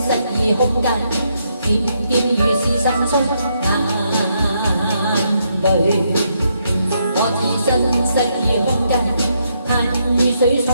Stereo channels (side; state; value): both; inverted; correlation -0.77